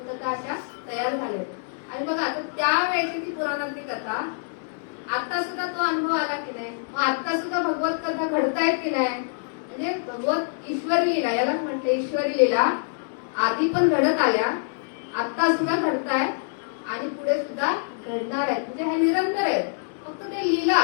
कथा अशा तयार झाल्या. आणि बघा आता त्यावेळेची ती पुराणातली कथा आता सुद्धा तो अनुभव आला की नाही, मग आता सुद्धा भगवत कथा घडतायत की नाही. म्हणजे भगवत ईश्वरी लीला, याला म्हटलं ईश्वरी लीला, आधी पण घडत आल्या, आता सुद्धा घडताय आणि पुढे सुद्धा घडणार आहेत. म्हणजे हे निरंतर आहे. फक्त ते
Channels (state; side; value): silent; right; digital silence